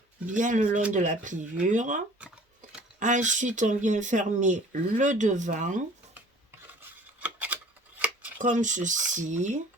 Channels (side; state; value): both; normal; correlation 0.49